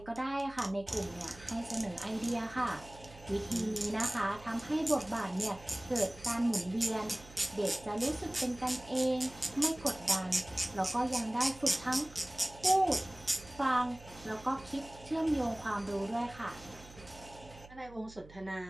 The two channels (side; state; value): right; noise; hum, 20 dB below the sound